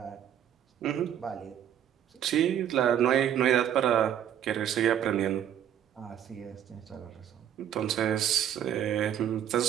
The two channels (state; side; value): quieter; left; 10.0 dB